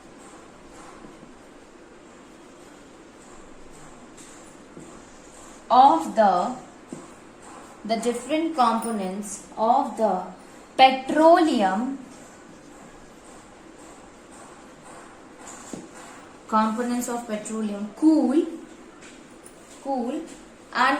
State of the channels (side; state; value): both; identical; correlation 1.00